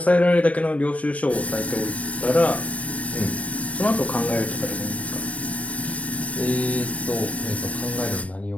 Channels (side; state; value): right; late; 0.065 ms